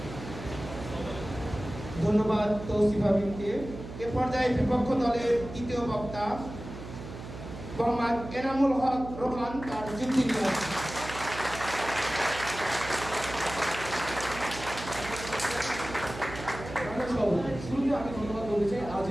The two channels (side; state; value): right; noise; hum, 11 dB below the sound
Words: ধন্যবাদ তৌসিফ আবিদকে। এ পর্যায়ে বিপক্ষ দলের তৃতীয় বক্তা মোহাম্মদ এনামুল হক রোহান তার যুক্তি নিয়ে আসছেন। শুরুতে আমি ধন্যবাদ বলতে চাই আজ